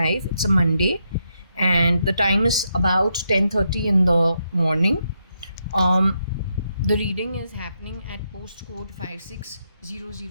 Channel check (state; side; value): inverted; both; correlation -0.81